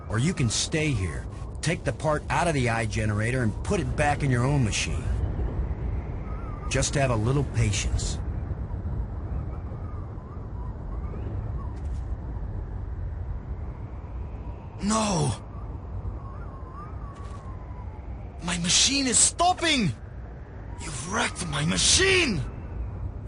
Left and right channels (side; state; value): both; identical; correlation 1.00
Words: or you can stay here, take the part out of the eye generator and put it back in your own machine. Just have a little patience. No! My machine is stopping! You've wrecked my machine!